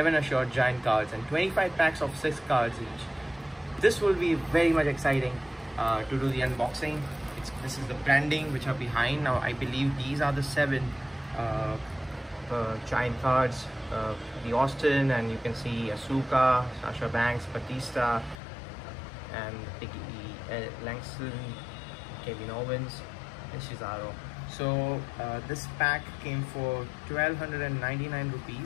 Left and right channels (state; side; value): drops out; right; at 18.4 s